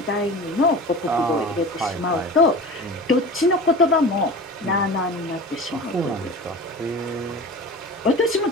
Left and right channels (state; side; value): normal; both; correlation 0.35